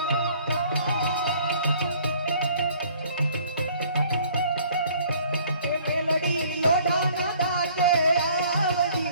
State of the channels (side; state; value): both; inverted; correlation -0.56